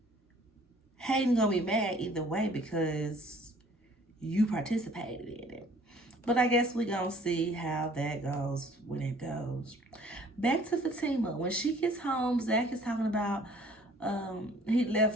Hayden gonna be mad either way because you participated in it. But I guess we gonna see how that goes when it goes. Back to Fatima. When she gets home, Zach is talking about he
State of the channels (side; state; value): both; normal; correlation 0.55